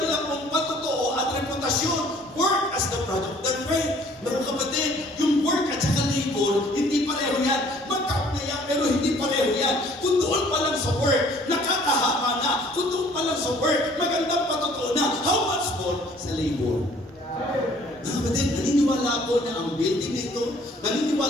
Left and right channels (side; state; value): both; normal; correlation 0.56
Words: pong patotoo at reputasyon, work as the product of their faith. Mga kapatid, yung work at saka labor, hindi pareho yan. Magkap na yan, pero hindi pareho yan. Kung doon pa lang sa work, nakakahama na. Kung doon pa lang sa work, magandang patotoo na. How much more sa labor? Mga kapatid, naniniwala ako na ang building nito,